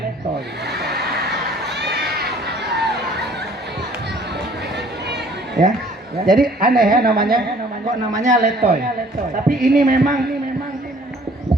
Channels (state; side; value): normal; both; correlation 0.56